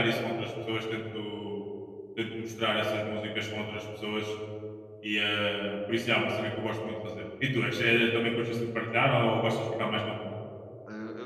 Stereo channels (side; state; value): both; identical; correlation 1.00